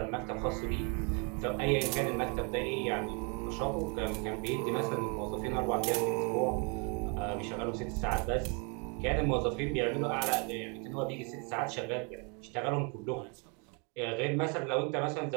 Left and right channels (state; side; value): quieter; left; 34.1 dB